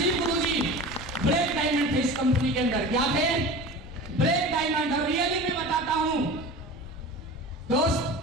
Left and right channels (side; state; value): both; normal; correlation 0.35